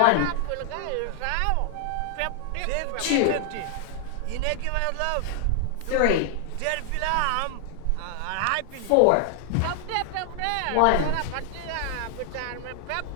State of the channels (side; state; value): both; different; correlation 0.00